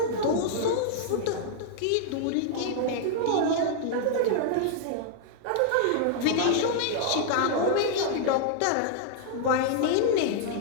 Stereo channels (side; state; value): both; different; correlation -0.01